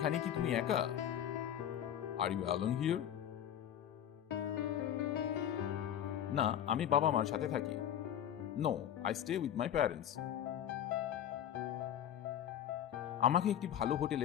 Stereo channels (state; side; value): quieter; right; 10.2 dB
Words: কি তুমি একা? Are you alone here? না, আমি বাবা মার সাথে থাকি। No, I stay with my parents. আমাকে একটি ভালো